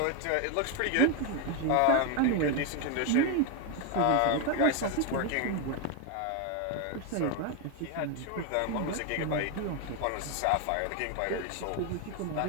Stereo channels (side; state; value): both; different; correlation 0.01